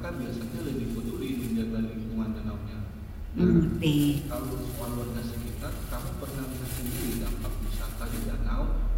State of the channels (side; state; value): both; identical; correlation 1.00